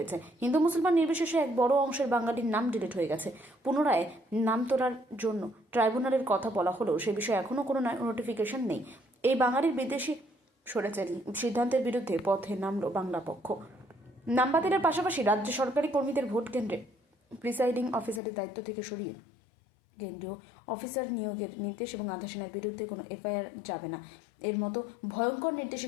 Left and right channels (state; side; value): drops out; right; at 18.2 s